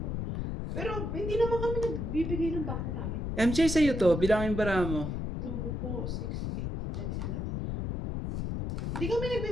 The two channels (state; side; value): noise; left; rumble, 3 dB below the sound